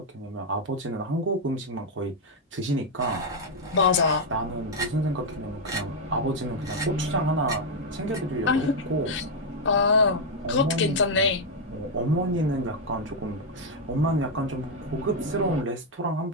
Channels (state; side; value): normal; both; correlation 0.00